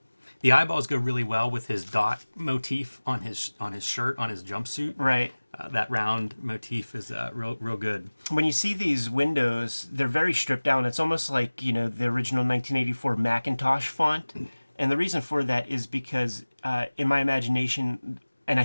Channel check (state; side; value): inverted; both; correlation -1.00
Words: The eyeballs go really well with his dot motif on his shirt, on his jumpsuit. Right. That round motif is real good. When you see these windows, they're very stripped down. It's almost like, the original 1984 Macintosh font. And the reason for that is because in my imagination, and I